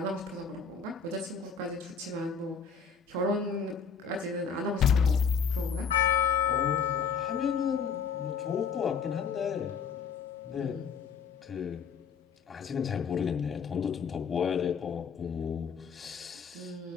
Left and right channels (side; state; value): right; quieter; 6.2 dB